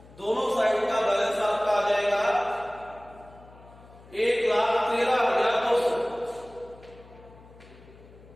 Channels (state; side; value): noise; left; hum, 23 dB below the sound